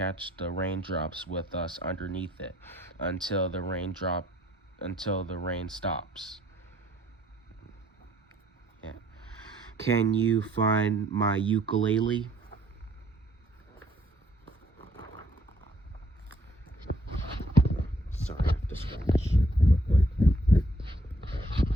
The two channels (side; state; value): both; normal; correlation 0.65